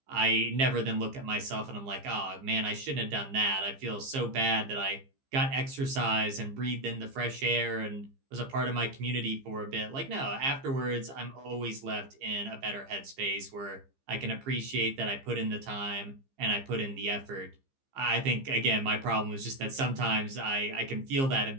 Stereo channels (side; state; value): left; late; 15 ms